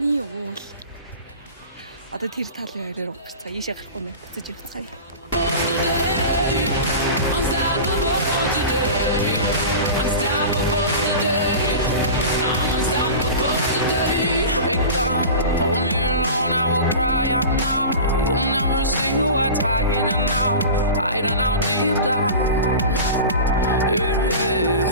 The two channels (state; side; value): inverted; both; correlation -0.33